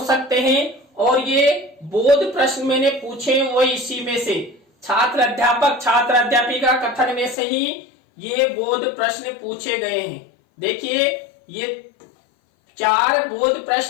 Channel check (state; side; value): drops out; right; at 7.4 s